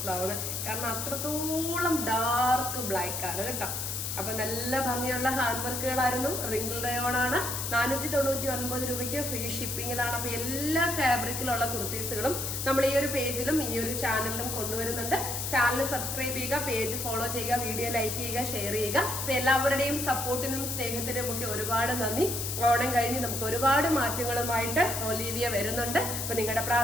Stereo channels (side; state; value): left; noise; hiss, 3 dB below the sound